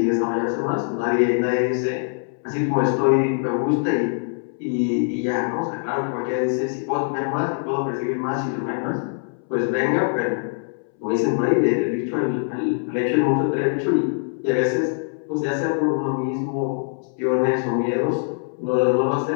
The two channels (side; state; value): right; silent; 63 dB below the other